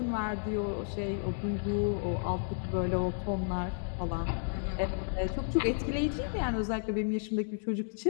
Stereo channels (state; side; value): silent; right; digital silence